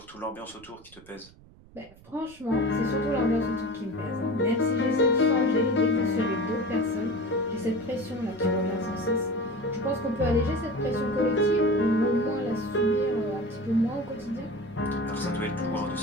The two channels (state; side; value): noise; right; rumble, 24 dB below the sound